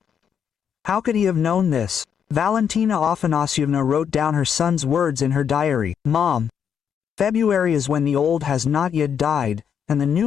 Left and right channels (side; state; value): right; quieter; 7.9 dB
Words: How could he have known this? Valentina Afanasyevna wrote down her son's words in her diary. "Mom, February is when the old has not yet died, and the